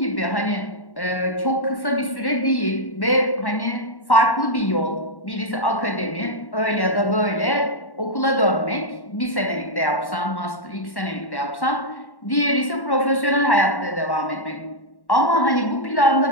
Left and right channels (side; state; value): right; late; 1.1 ms